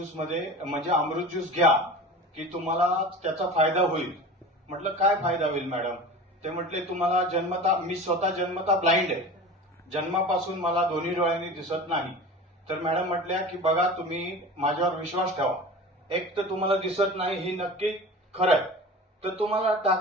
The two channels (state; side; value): normal; both; correlation 0.35